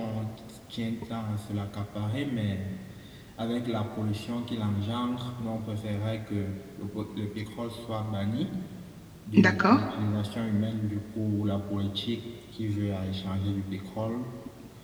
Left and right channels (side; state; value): both; identical; correlation 1.00